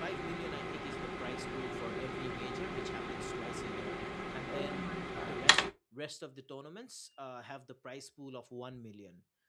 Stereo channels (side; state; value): both; identical; correlation 1.00